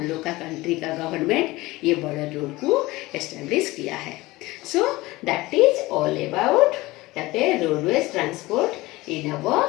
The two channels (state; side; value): quieter; right; 20.1 dB